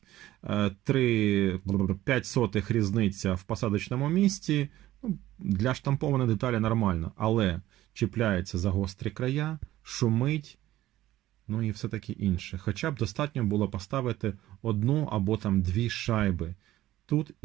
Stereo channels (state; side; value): quieter; left; 14.9 dB